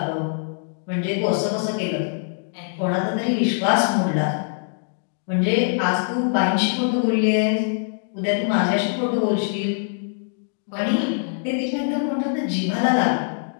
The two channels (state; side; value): silent; right; digital silence